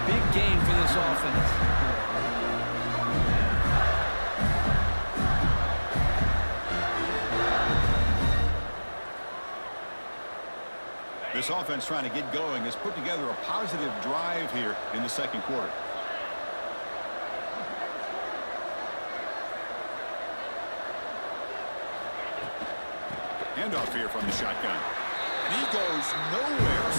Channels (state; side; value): inverted; both; correlation -1.00